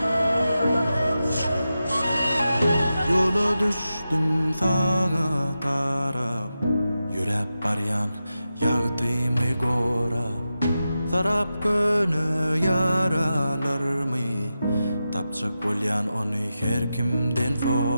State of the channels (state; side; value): inverted; both; correlation -0.91